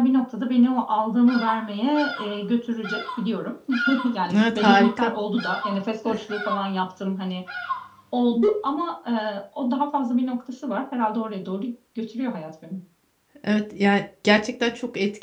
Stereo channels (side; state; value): both; identical; correlation 1.00